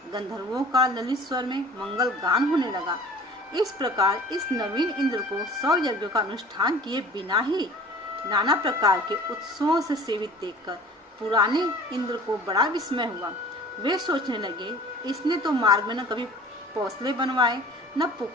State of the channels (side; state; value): both; normal; correlation 0.45